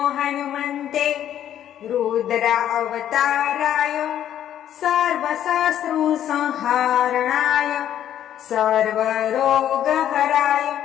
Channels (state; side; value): quieter; right; 10.8 dB